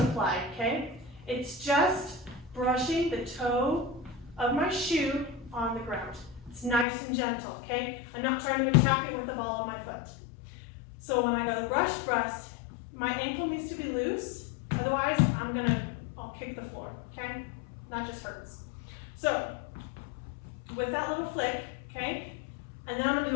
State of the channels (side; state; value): right; drops out; at 6.9 s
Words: okay? It's just brushing the toe of my shoe on the ground. It's nice and gentle, okay? I'm not trying to attack it with the ball of my foot. So when I go brush, my ankle needs to be loose. Otherwise, I'll kick the floor, okay? Not just hurts. So with that little flick, okay, and then I'm gonna